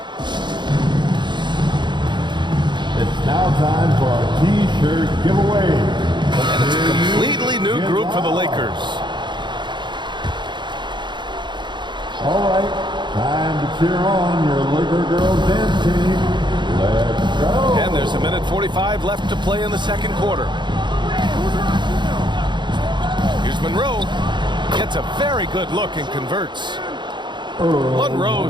It's now time for our T-shirt giveaway. And it's a completely new group for the Lakers. All right, time to cheer on your Laker girls dance team. Let's go. And there's 1:45 left to play in the second quarter. Here's Monroe. Gets a very good look and converts.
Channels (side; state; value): left; late; 0.22 ms